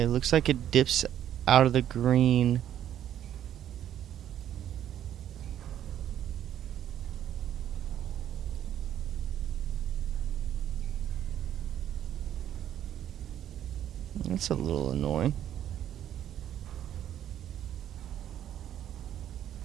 looks like it dips out of the green. That's a little annoying.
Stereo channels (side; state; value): left; quieter; 10.8 dB